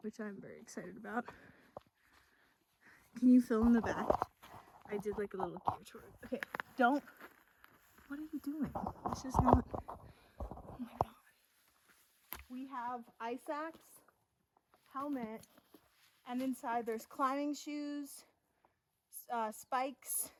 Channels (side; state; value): both; identical; correlation 1.00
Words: which I'm very excited about. Can you film the back? I did like a little gear tour. Okay, don't. What are you doing? This is not. Oh my god. We have ice axe, helmet, and inside there's climbing shoes, spikes,